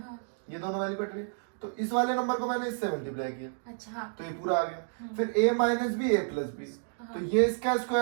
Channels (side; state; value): left; silent; digital silence